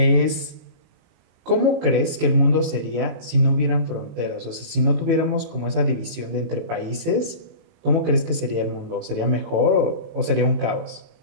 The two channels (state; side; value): late; left; 18 ms